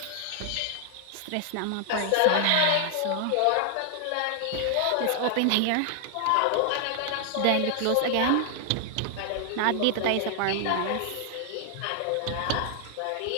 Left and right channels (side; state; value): both; different; correlation 0.00